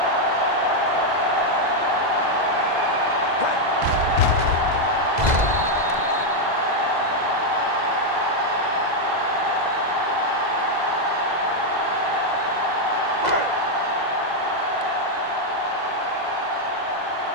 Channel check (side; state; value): left; late; 2.0 ms